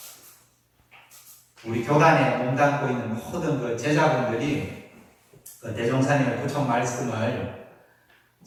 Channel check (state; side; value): identical; both; correlation 1.00